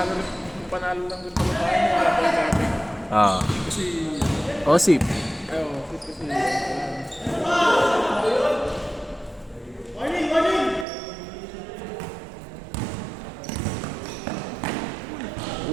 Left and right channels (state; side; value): drops out; left; at 10.9 s